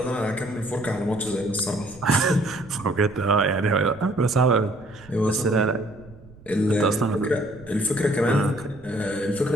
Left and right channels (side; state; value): right; noise; rumble, 22 dB below the sound